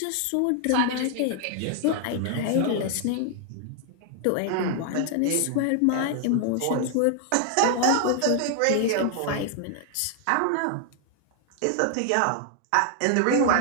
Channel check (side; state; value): both; different; correlation 0.00